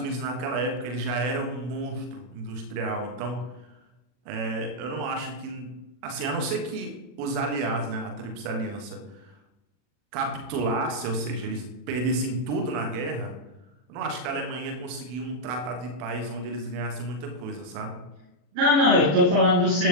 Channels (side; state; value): left; late; 40 ms